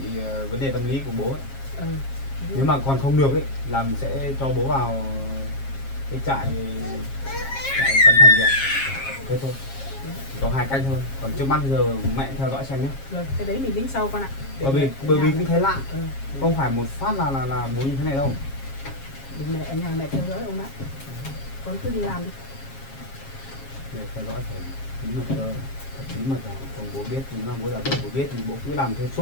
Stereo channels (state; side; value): late; right; 7.4 ms